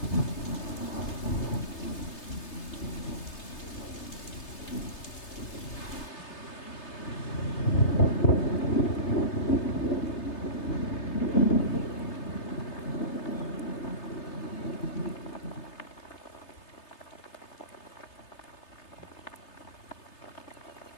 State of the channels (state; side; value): late; right; 3.3 ms